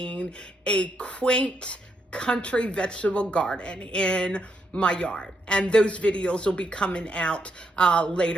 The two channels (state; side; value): normal; both; correlation 0.78